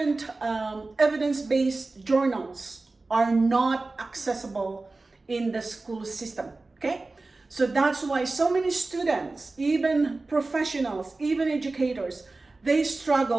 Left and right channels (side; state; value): left; quieter; 3.4 dB